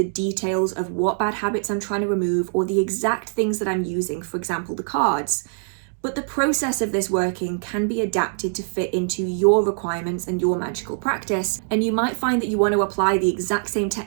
details of what bad habits I'm trying to remove or the exact things that I'm using, for example, the cards. But the process of this working can be adapted to fit into your requirements and your magical practice, and you might find that you want to apply the exact same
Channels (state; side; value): silent; left; digital silence